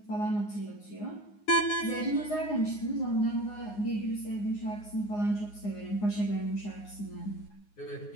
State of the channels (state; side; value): late; right; 9.6 ms